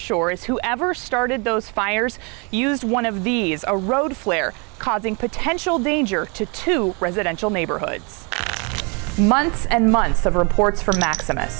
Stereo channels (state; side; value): quieter; left; 32.4 dB